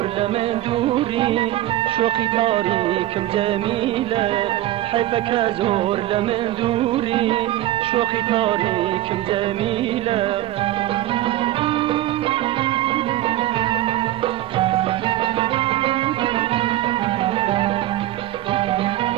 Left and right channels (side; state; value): left; quieter; 14.6 dB